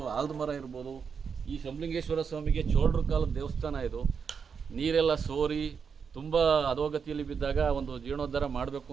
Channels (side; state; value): left; quieter; 6.2 dB